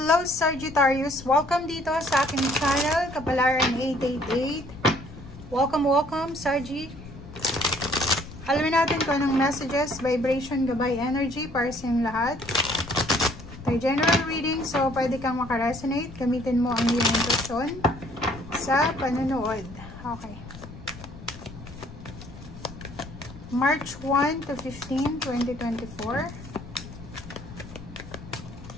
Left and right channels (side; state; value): left; noise; rumble, 15 dB below the sound